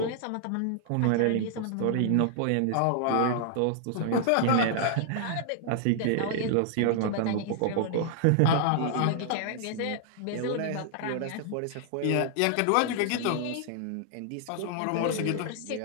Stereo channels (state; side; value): different; both; correlation 0.00